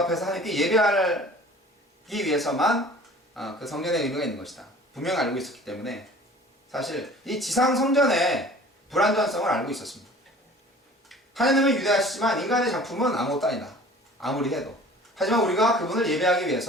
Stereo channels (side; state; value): both; normal; correlation 0.47